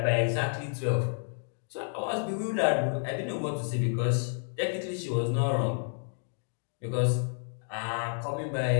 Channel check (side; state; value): right; silent; 58 dB below the other